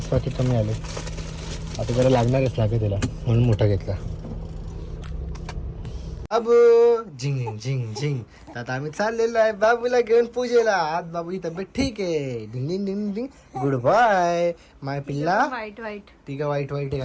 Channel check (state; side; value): identical; both; correlation 1.00